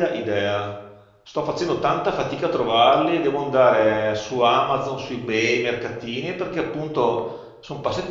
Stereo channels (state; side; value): identical; both; correlation 1.00